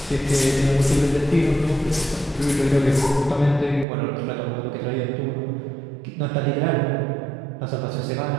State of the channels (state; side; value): drops out; left; at 3.9 s